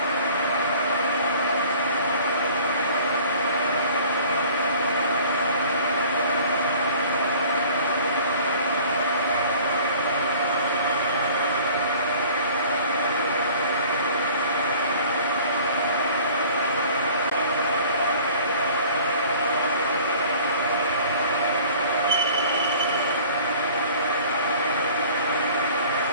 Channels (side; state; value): both; inverted; correlation -0.49